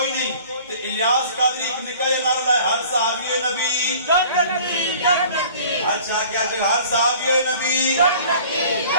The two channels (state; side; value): inverted; both; correlation -0.48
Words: نہیں. تو الیاس قادری ایک نکاح نعرہ لائے, ہر صحابی نبی جنتی جنتی. اچھا کیا چھے ہر صحابی نبی جنتی